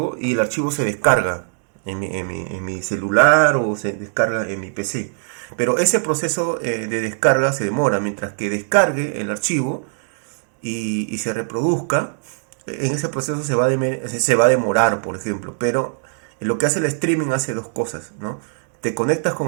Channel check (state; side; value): silent; left; digital silence